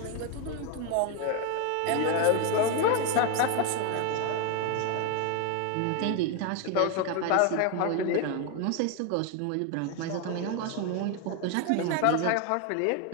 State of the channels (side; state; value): both; different; correlation 0.01